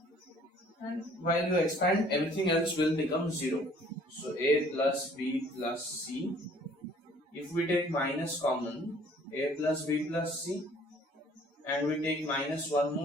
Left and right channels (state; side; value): normal; both; correlation 0.56